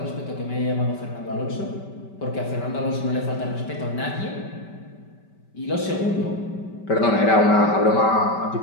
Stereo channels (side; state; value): right; late; 5.2 ms